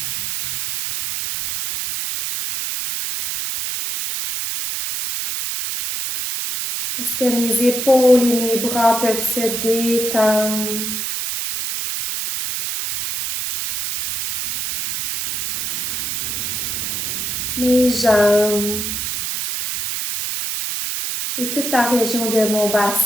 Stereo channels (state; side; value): noise; right; hiss, 3 dB below the sound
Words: Est-ce que mes épaules et mes bras peuvent se détendre? Mes jambes et toute la région de mon